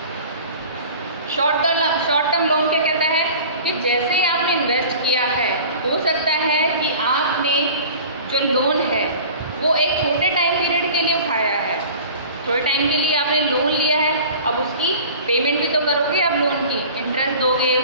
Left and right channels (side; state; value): both; inverted; correlation -0.42